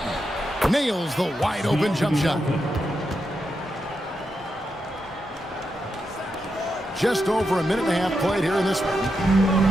Nails the wide open jump shot. Just over a minute and a half played here in this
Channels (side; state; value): both; normal; correlation 0.85